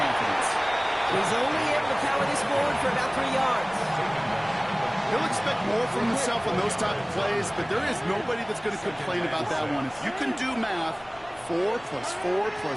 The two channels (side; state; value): left; noise; rumble, 25 dB below the sound